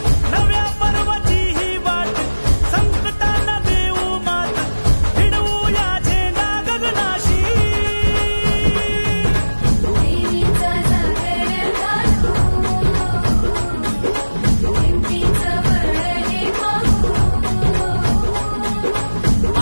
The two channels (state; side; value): inverted; both; correlation -1.00